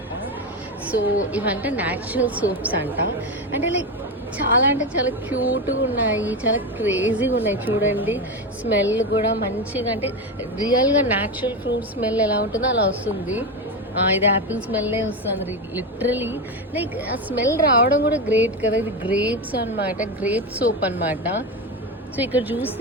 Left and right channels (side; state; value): both; normal; correlation 0.16